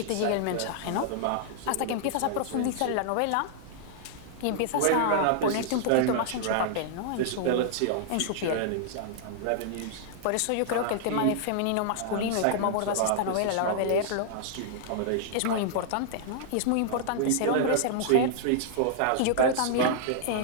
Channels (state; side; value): different; both; correlation -0.01